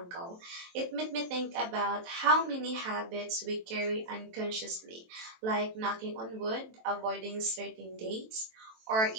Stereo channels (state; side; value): late; left; 23 ms